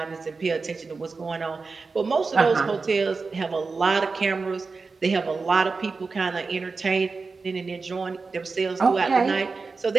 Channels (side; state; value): left; quieter; 4.3 dB